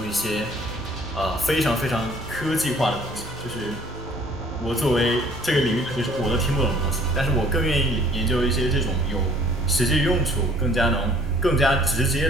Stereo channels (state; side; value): normal; both; correlation 0.56